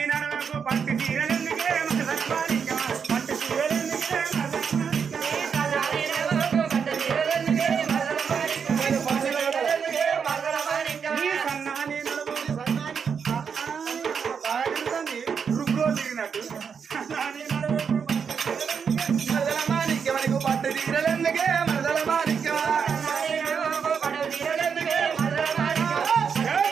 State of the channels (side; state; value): left; quieter; 6.6 dB